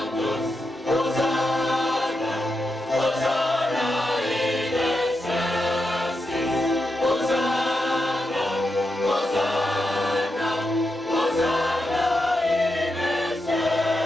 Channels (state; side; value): normal; both; correlation 0.86